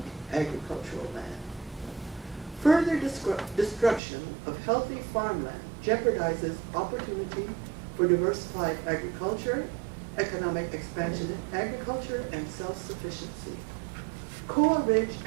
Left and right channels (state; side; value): drops out; left; at 4.0 s